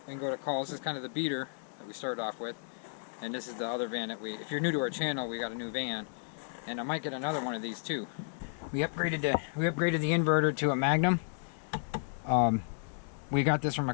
can go to calls. This is kind of the beater that we started off with. And this is the other van that if you're new to our channel, we got a new van. And I might get another one of these too. We upgraded the inverter to a Magnum. We got this from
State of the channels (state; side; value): silent; right; 56 dB below the other